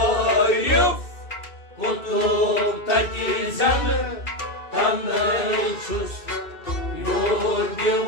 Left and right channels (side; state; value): right; late; 2.6 ms